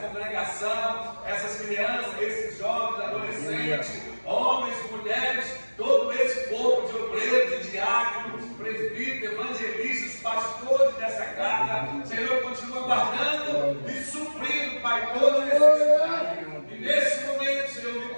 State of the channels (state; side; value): inverted; both; correlation -1.00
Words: essas crianças, esses jovens, adolescentes, homens, mulheres, todo esse povo de obreiros, de diáconos, presbíteros, evangelistas, pastores dessa casa. Senhor, continua guardando e suprindo, Pai, toda necessidade. E nesse momento, Senhor, me